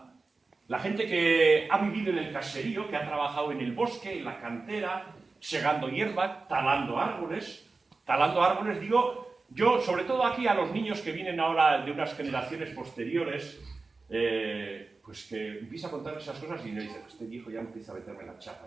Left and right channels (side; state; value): left; quieter; 3.9 dB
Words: La gente que ha vivido en el caserío, que ha trabajado en el bosque, en la cantera, segando hierba, talando árboles, digo, yo, sobre todo aquí a los niños que vienen ahora de unas generaciones posteriores, pues que empieza a contar esas cosas y me dicen, este viejo ya empieza a meterme la